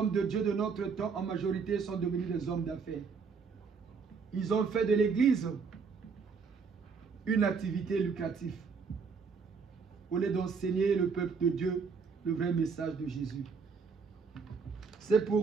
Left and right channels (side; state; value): left; quieter; 5.4 dB